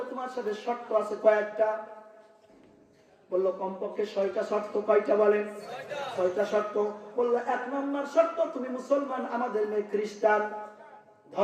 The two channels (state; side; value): identical; both; correlation 1.00